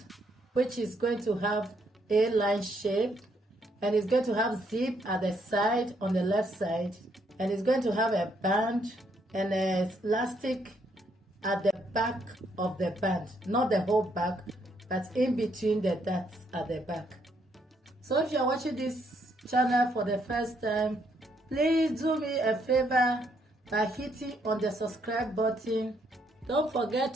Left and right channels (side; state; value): both; normal; correlation 0.72